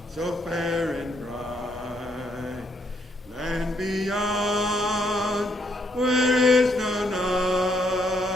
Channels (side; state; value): both; normal; correlation 0.72